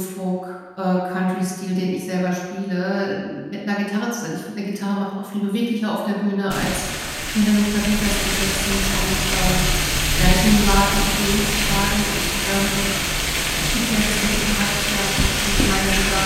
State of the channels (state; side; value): identical; both; correlation 1.00